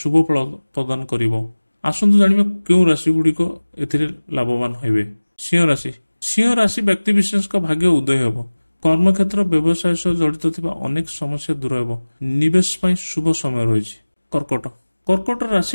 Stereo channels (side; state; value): both; inverted; correlation -1.00